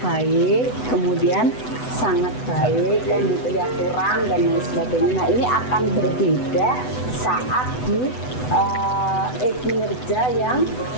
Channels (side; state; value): right; late; 8.0 ms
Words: baik, kemudian sangat baik, kan gitu ya, kurang dan lain sebagainya. Nah, ini akan berbeda saat di kinerja yang